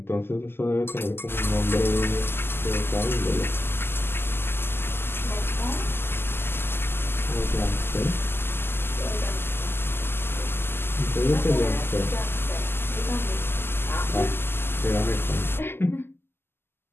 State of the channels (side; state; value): right; late; 0.11 ms